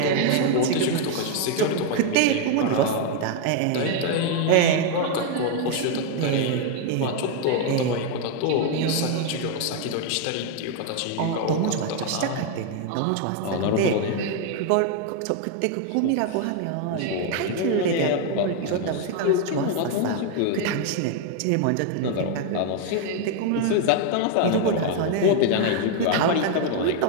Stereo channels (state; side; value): different; both; correlation 0.00